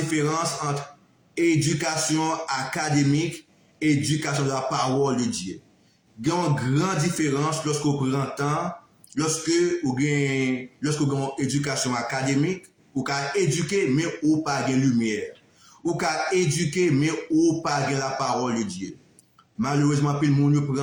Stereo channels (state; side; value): identical; both; correlation 1.00